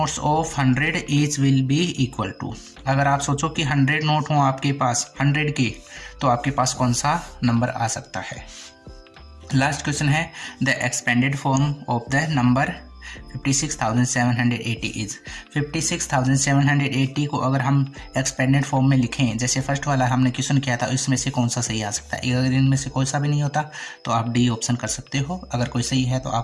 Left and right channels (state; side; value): identical; both; correlation 1.00